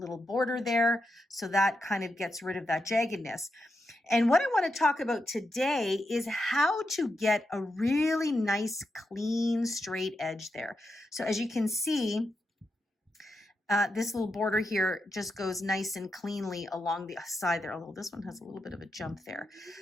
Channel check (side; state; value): both; normal; correlation 0.86